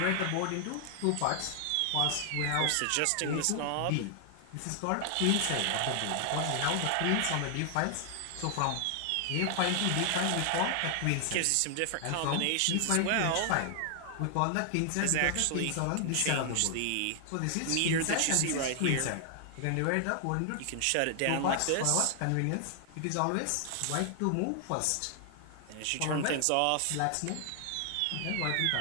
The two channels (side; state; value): both; different; correlation 0.00